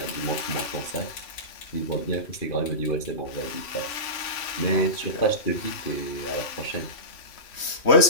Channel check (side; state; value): right; late; 3.1 ms